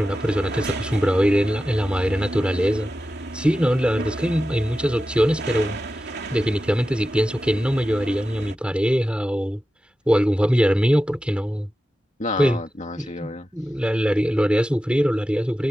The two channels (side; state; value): both; normal; correlation 0.93